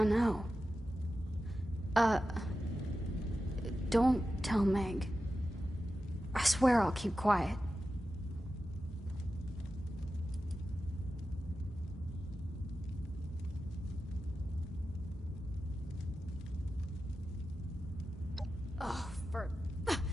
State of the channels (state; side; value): normal; both; correlation 0.92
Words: know. Don't tell Meg. I swear I'll keep quiet. Oh, for...